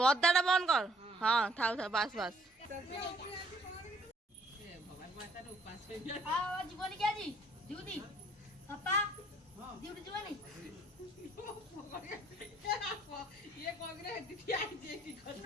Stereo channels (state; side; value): normal; both; correlation 0.61